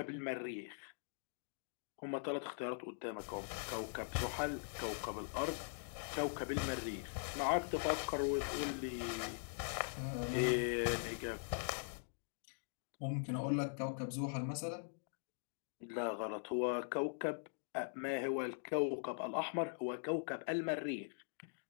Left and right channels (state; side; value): silent; right; digital silence